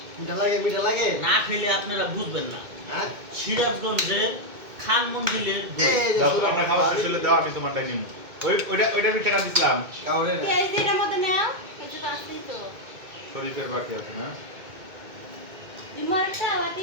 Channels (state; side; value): late; left; 2.2 ms